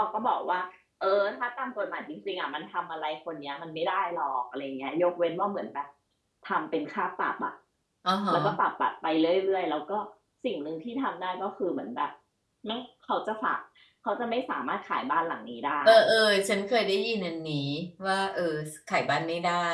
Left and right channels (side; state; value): both; identical; correlation 1.00